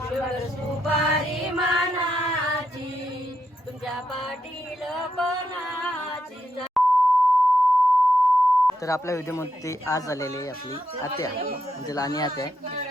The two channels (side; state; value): both; normal; correlation 0.82